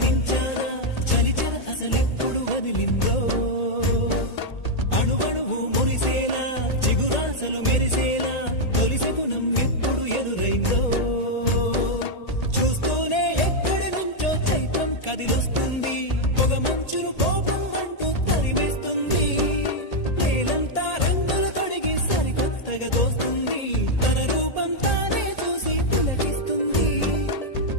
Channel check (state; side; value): late; right; 1.8 ms